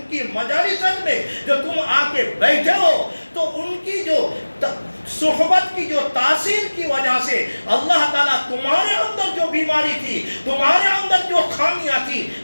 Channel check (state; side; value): inverted; both; correlation -1.00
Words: मजालिसत में जो तुम आके बैठे हो, तो उनकी जो सोहबत की जो तासीर की वजह से अल्लाह ताला तुम्हारे अंदर जो बीमारी थी, तुम्हारे अंदर जो खामियां थी,